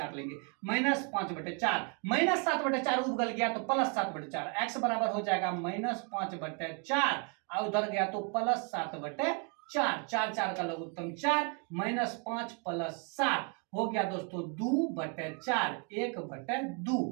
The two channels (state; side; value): quieter; left; 35.5 dB